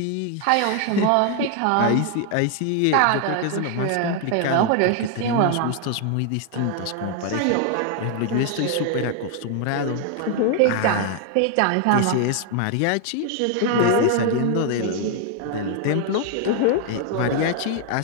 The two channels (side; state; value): both; different; correlation 0.00